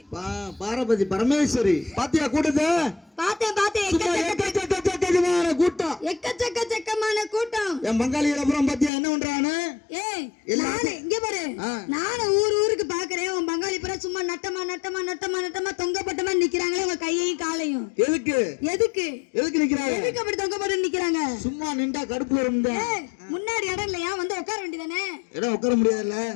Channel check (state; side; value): drops out; right; at 8.9 s